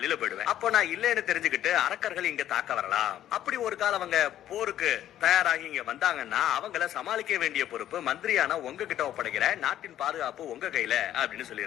போயிடுவேன், அப்போ நான் இல்லைன்னு தெரிஞ்சுக்கிட்டு அரக்கர்கள் இங்க தாக்க வரலாம், அப்படி ஒரு காலம் அவங்க போருக்கு தயாராகி இங்க வந்தாங்கன்னா அவங்கள சமாளிக்க வேண்டிய பொறுப்பு மந்திரியான உங்ககிட்ட ஒப்படைக்கிற, நாட்டின் பாதுகாப்பு உங்க கையில அப்படின்னு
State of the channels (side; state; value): right; quieter; 11.9 dB